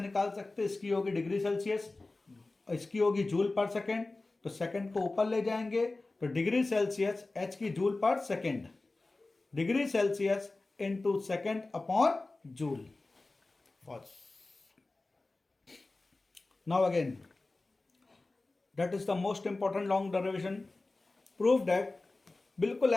सकते हैं, इसकी होगी डिग्री सेल्सियस, इसकी होगी जूल पर सेकेंड. तो सेकेंड को ऊपर ले जाएंगे तो डिग्री सेल्सियस, एच की जूल पर second, degree Celsius into second upon joule. Now again, that is the most important long derivation. Prove that, बिल्कुल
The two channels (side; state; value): right; quieter; 3.2 dB